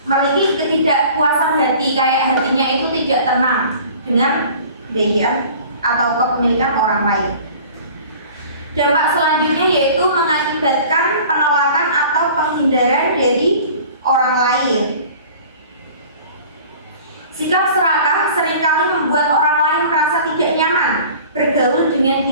memiliki ketidakpuasan hati, kayak hatinya itu tidak tenang dengan kebaikan atau kepemilikan orang lain. Dampak selanjutnya yaitu mengakibatkan penolakan atau penghindaran dari orang lain. Sikap serakah seringkali membuat orang lain merasa tidak nyaman bergaul dengan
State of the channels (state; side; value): inverted; both; correlation -0.45